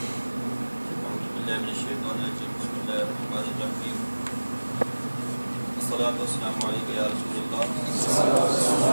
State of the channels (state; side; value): inverted; both; correlation -1.00